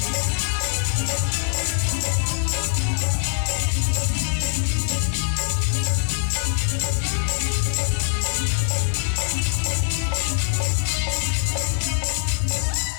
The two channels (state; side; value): silent; right; 61 dB below the other